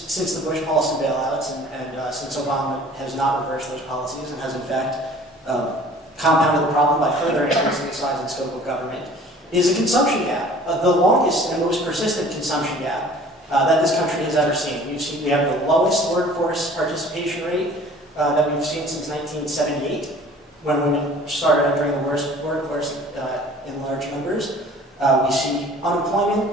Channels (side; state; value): both; normal; correlation 0.49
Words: the Bush policy bailouts and since Obama has not reversed those policies and has in fact compounded the problem by further increasing the size and scope of government, is a consumption gap, the longest and most persistent consumption gap that this country has ever seen. We have the lowest workforce participation rate that we've seen since 1978, when women started entering the workforce in large numbers. We see